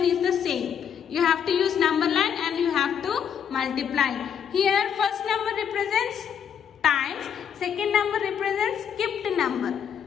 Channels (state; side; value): quieter; right; 8.1 dB